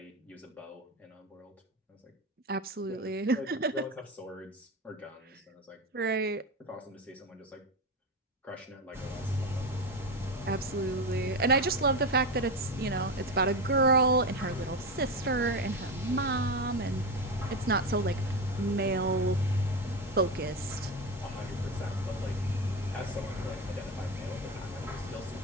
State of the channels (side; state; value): both; normal; correlation 0.18